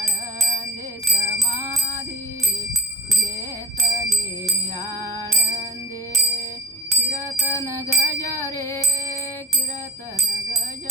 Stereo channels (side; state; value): both; normal; correlation 0.41